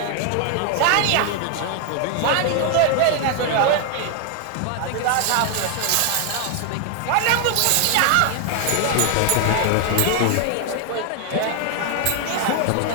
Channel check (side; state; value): both; different; correlation 0.00